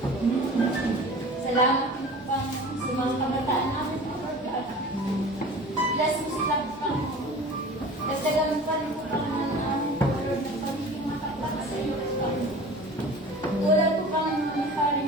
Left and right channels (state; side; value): normal; both; correlation 0.40